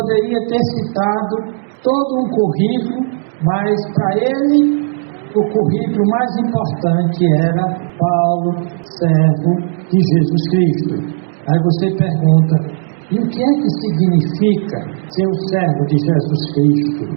ter citado todo um currículo, mas para ele o currículo mais importante era Paulo, servo de Jesus Cristo. Aí você pergunta, e o que é que significa ser um servo de Jesus Cristo?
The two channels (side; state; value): left; silent; 65 dB below the other